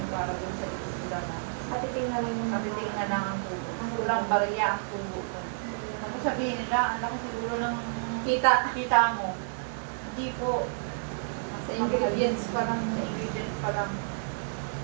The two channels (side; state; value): left; silent; digital silence